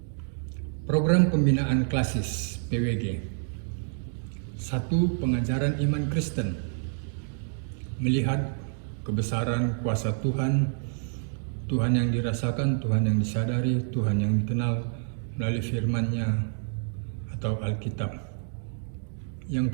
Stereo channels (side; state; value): left; silent; 59 dB below the other